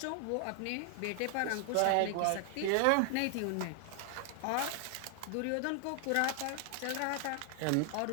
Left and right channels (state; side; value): different; both; correlation 0.00